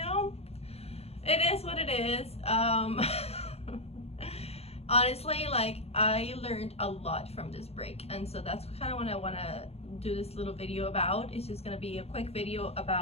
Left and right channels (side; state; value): right; late; 0.30 ms